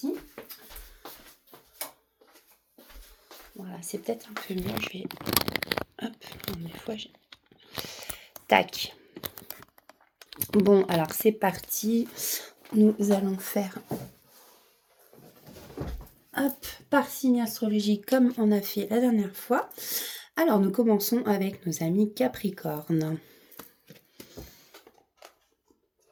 Voilà, c'est peut-être un peu mieux. Je vais... Hop, des fois j'ai... Tac. Bon, alors c'est parti. Nous allons faire... Hop, par signe astrologique comme on a fait la dernière fois. Alors nous commençons avec nos amis Capricorne.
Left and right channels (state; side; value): identical; both; correlation 1.00